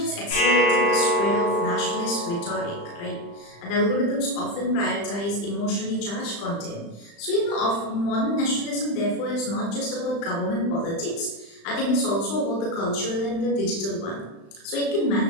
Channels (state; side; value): late; right; 35 ms